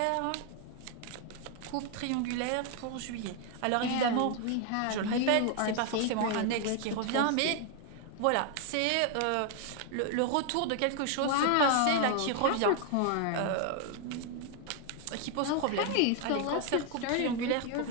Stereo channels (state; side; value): different; both; correlation 0.00